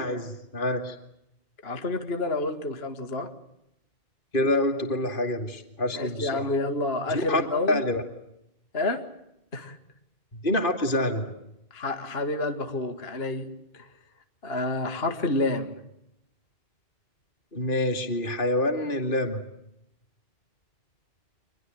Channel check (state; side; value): late; right; 2.5 ms